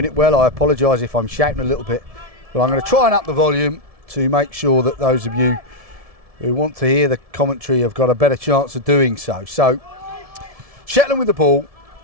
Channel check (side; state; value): left; late; 1.7 ms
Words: it well, I apologise if I'm shouting a little bit. But I'm going to try and up the volume to make sure that those of you who want to hear the commentary have got a better chance of doing so. So Shetland with the ball,